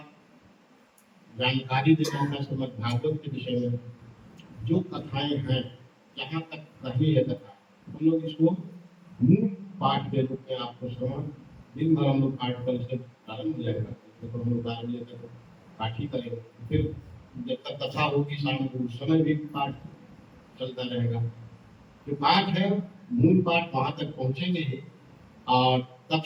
जानकारी देना है श्रीमद् भागवत के विषय में। जो कथाएं हैं, जहाँ तक कही है कथा, हम लोग इसको मूल पाठ के रूप में आपको श्रवण दिन भर हम लोग पाठ कल से प्रारंभ हो जाएगा। तो हम लोग 12 बजे तक पाठ ही करेंगे, फिर जब तक कथा होगी शाम को उस समय भी पाठ चलता रहेगा। जो पाठ है मूल पाठ वहां तक पहुंचेंगे ही, और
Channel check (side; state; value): both; identical; correlation 1.00